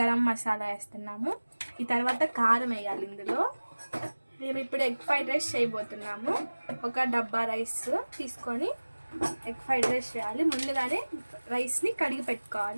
మసాలా వేస్తున్నాము. ఈ తర్వాత కారం వేయాలి. ఇందులో మేము ఇప్పుడు ఎగ్ ఫ్రైడ్ రైస్ చేయబోతున్నాము. ఒక డబ్బా రైస్ తీసుకొని ఎగ్ ఫ్రైడ్ రైస్ చేయాలి. ముందుగానే రైస్ని కడిగి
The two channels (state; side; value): inverted; both; correlation -1.00